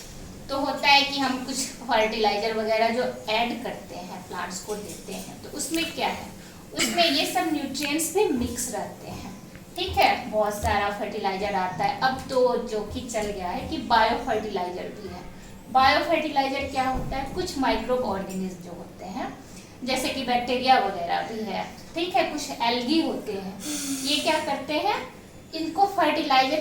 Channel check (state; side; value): identical; both; correlation 1.00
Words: तो होता है कि हम कुछ फर्टिलाइजर वगैरह जो ऐड करते हैं प्लांट्स को देते हैं, तो उसमें क्या है, उसमें ये सब न्यूट्रिएंट्स भी मिक्स रहते हैं। ठीक है, बहुत सारा फर्टिलाइजर आता है। अब तो जो कि चल गया है कि बायो फर्टिलाइजर भी है। बायो फर्टिलाइजर क्या होता है, कुछ माइक्रोब ऑर्गेनिज्म जो होते हैं जैसे कि बैक्टीरिया वगैरह भी है, ठीक है, कुछ एल्गी होते हैं, ये क्या करते हैं, इनको फर्टिलाइजर